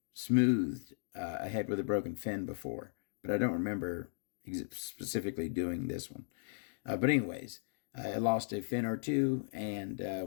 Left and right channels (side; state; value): right; silent; digital silence